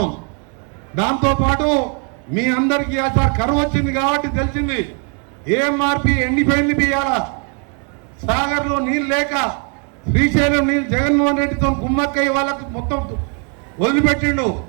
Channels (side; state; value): left; quieter; 38.9 dB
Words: దాంతోపాటు మీ అందరికీ సార్ కరువు వచ్చింది కాబట్టి తెలిసింది ఏఎంఆర్పి ఎండిపోయింది బియ్యాల. సాగర్లో నీళ్ళు లేక శ్రీశైలం నీళ్ళు జగన్మోహన్ రెడ్డితో కుమ్మక్కయ్య వాళ్ళకు మొత్తం వదిలిపెట్టిండు.